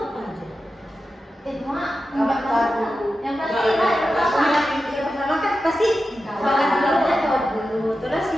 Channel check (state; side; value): normal; both; correlation 0.91